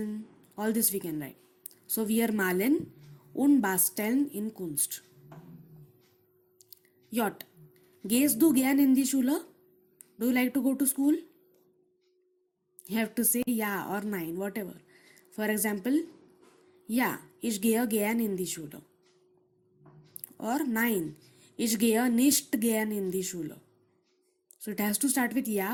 all this we can write. So wir malen und basteln in Kunst. J. Gehst du gern in die Schule? Do you like to go to school? You have to say ja or nein, whatever. For example, ja, ich gehe gern in die Schule. Or nein, ich gehe nicht gern in die Schule. So it has to start with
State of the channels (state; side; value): identical; both; correlation 1.00